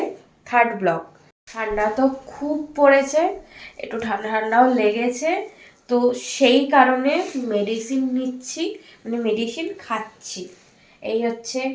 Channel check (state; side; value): identical; both; correlation 1.00